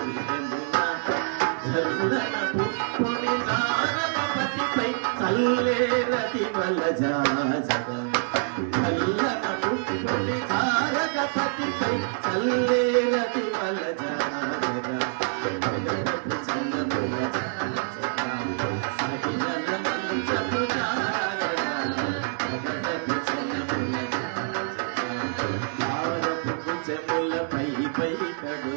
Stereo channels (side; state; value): left; silent; digital silence